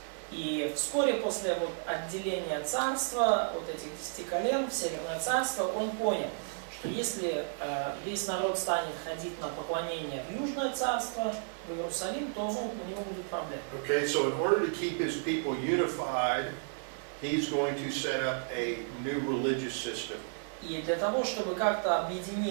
И вскоре после отделения царства, этих 10 колен в Северное царство, он понял, что если весь народ станет ходить на поклонение в Южное царство, в Иерусалим, то у него будут проблемы. Okay, so in order to keep his people unified, he's going to set up a new religious system. И для того, чтобы как-то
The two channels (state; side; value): silent; left; digital silence